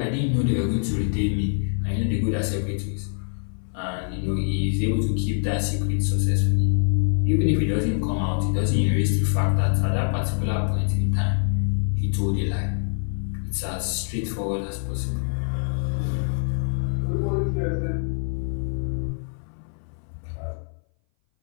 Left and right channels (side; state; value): right; silent; 60 dB below the other